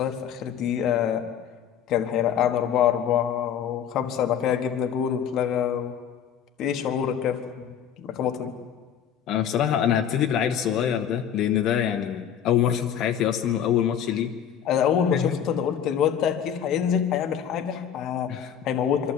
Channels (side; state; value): right; quieter; 8.8 dB